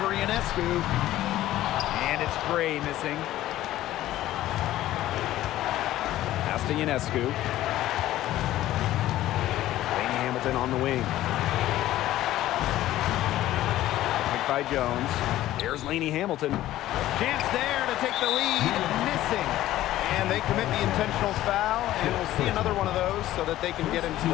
Ionescu. And it's Gray missing. Pass to Ionescu. Lainey Hamilton on the wing. By Jones. Here's Lainey Hamilton. Chance there to take the lead. Missing. And they commit the intentional foul, and we'll see another one of those so that they can get into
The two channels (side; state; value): right; quieter; 14.4 dB